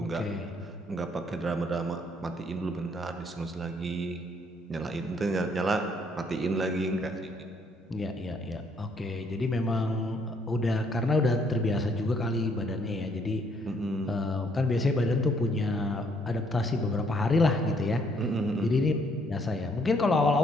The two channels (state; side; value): normal; both; correlation 0.67